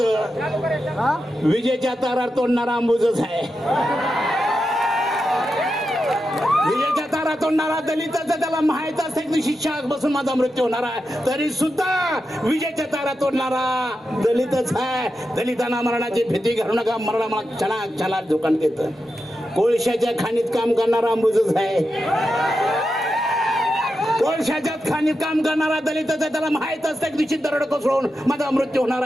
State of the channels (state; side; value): normal; both; correlation 0.89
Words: विजेच्या तारार तोडणारा अंबुजच आहे. विजेच्या तारा तोडणारा दलिताचं त्याला माहित असते की शिक्षा बसून माझा मृत्यू होणार आहे, तरी सुद्धा विजेच्या तारा तोडणारा दलितच आहे. दलितांना मरणाची भीती घालू नका, मरण मला क्षणाला धोका देत. कोळशाच्या खाणीत काम करणारा अंबुजच आहे. कोळशाच्या खाणीत काम करणारा दलिताचा त्याला माहित असतं की दरड कोसळून माझा मृत्यू होणार